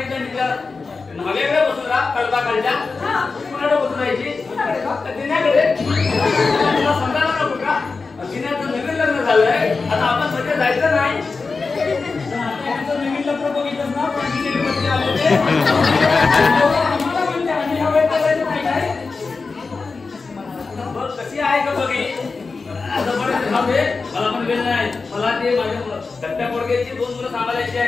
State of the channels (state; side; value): quieter; right; 4.3 dB